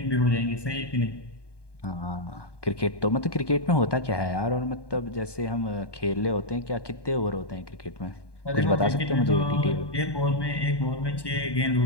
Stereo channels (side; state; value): right; late; 1.2 ms